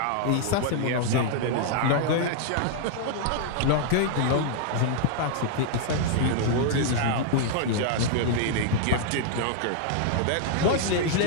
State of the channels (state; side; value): different; both; correlation -0.01